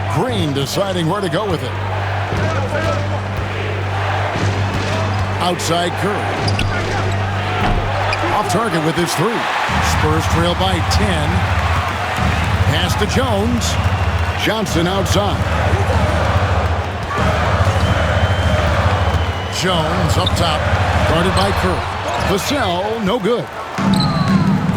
Green deciding where to go with it. Outside Curry. Off target with his 3. Spurs trail by 10. Pass to Jones. Johnson outside. Jones up top. Guarded by Curry. Vassell, no good.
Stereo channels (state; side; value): identical; both; correlation 1.00